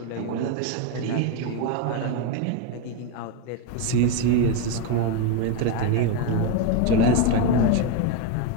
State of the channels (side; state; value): both; different; correlation 0.03